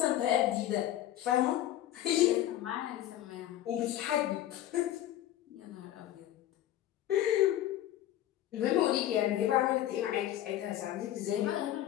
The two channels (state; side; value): quieter; right; 12.9 dB